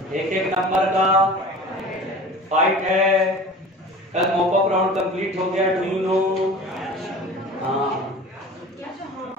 एक एक नंबर का फाइट है। कल मॉपअप राउंड कंप्लीट हो गया, डू यू नो? हाँ,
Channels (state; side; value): normal; both; correlation 0.39